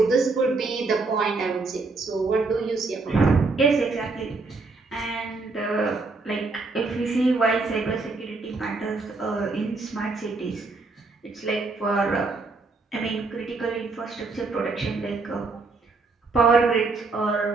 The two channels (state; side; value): quieter; left; 3.8 dB